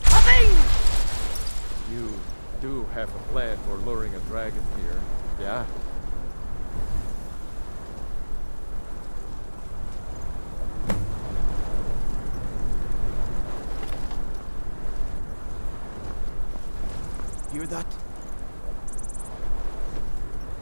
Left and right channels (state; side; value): inverted; both; correlation -1.00